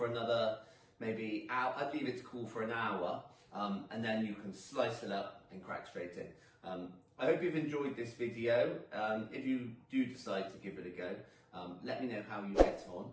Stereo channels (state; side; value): identical; both; correlation 1.00